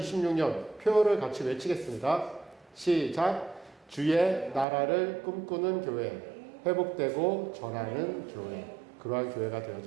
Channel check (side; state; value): left; drops out; at 4.7 s